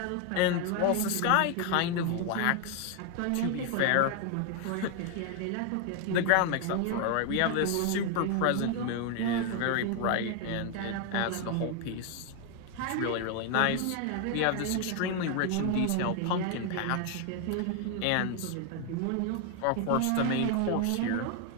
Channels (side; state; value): both; different; correlation 0.01